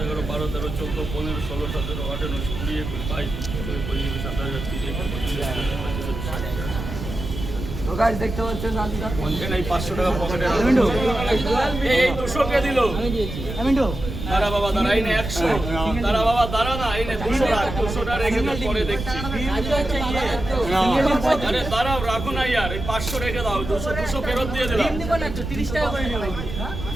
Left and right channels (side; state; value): right; noise; rumble, 7 dB below the sound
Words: 12 13 14 15 16 17 18 19 20 21 22 23 24 27 28 তো গাইস দেখতে পাচ্ছেন রাজুদা এই 500 টাকা পকেটে এই 200 কে দিল? আমি দিয়েছি। আমিন্টু দাঁড়া বাবা, দাঁড়া, এই নে 100। দাঁড়া বাবা, দাঁড়া না, এই নে 200 রাখ, 200টা রেখে দাও, পরে দেখছি। আরে দাঁড়াও, রাখো না ইয়ার, এই 500 রেখে দাও, 200 ফেরত দিয়ে দিলাম। দিব না তো 30 টাকা করে নিও।